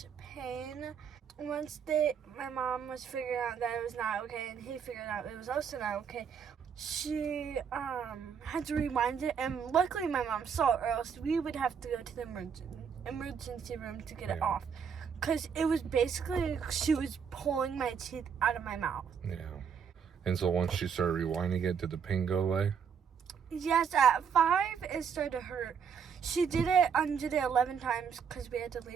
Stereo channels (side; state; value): left; quieter; 7.0 dB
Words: pain. Once my mom was figuring out that it was not okay, and he figured out it was also not okay, she had to rewind it, and luckily my mom saw it, or else we would have to go to the emergency room to get it off, because it was basically she was pulling my teeth out of my mouth. Yeah. And so once she started rewinding it, did the pain go away? Yes, at 5 it started to hurt. She did it 11 times because we had to